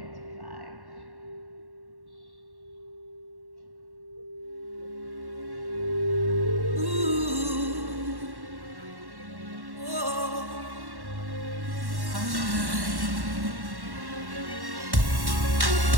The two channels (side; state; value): left; late; 1.1 ms